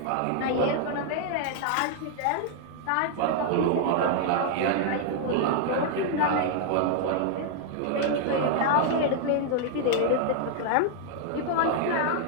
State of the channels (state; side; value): different; both; correlation 0.00